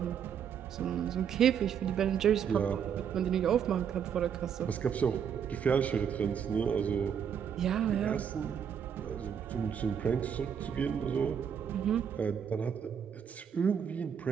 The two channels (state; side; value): quieter; left; 7.9 dB